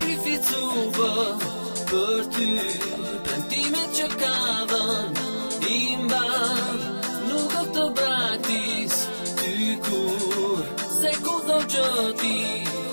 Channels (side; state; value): both; inverted; correlation -1.00